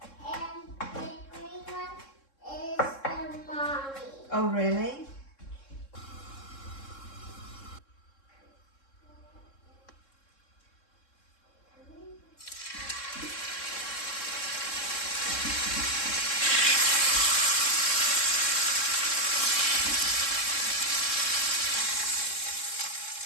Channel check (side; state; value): right; late; 3.7 ms